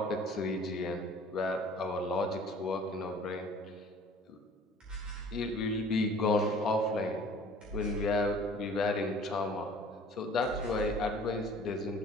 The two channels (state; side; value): normal; both; correlation 0.50